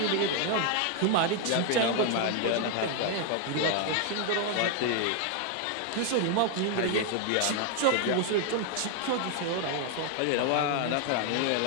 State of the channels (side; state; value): both; different; correlation 0.00